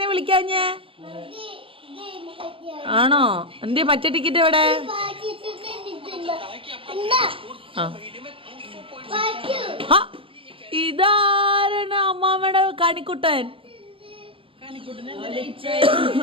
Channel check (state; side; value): late; left; 0.26 ms